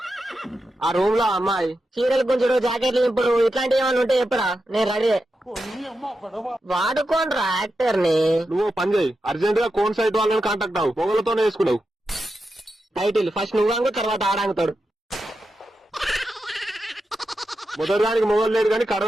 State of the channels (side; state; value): both; normal; correlation 0.89